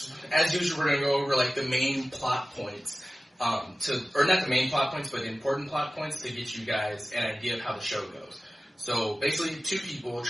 as usual, we're going to go over, like, the main plot points, or not the main plot points, but the important plot points to get you guys an idea of how the show goes. So, basically, two people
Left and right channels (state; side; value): normal; both; correlation 0.97